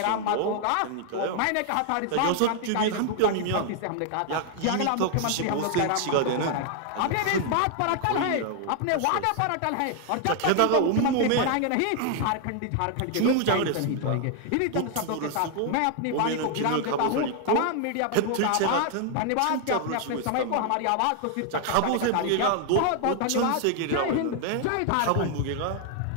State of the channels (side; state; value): both; different; correlation 0.00